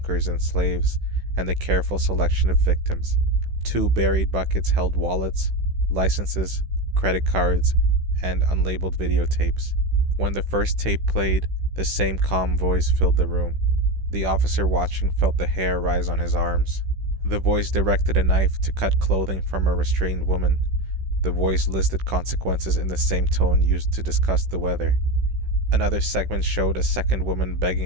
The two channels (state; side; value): late; left; 16 ms